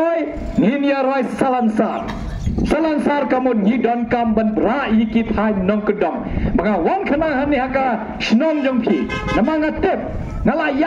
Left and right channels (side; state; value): both; identical; correlation 1.00